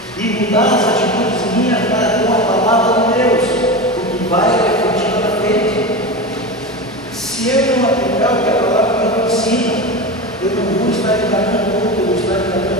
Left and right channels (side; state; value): both; normal; correlation 0.23